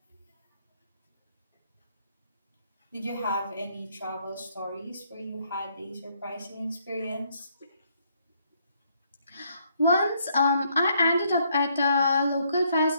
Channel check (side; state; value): both; inverted; correlation -0.71